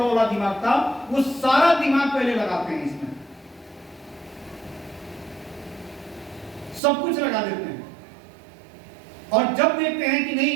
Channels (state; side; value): drops out; left; at 6.8 s